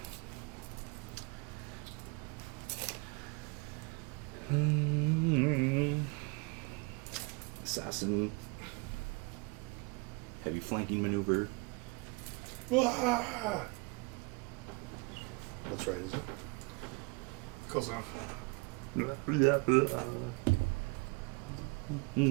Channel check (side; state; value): left; quieter; 29.0 dB